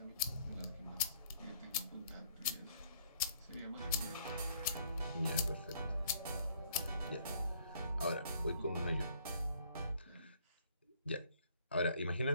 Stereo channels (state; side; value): inverted; both; correlation -0.63